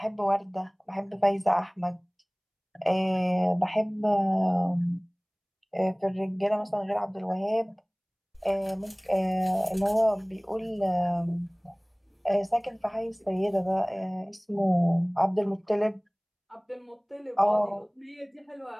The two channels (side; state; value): both; identical; correlation 1.00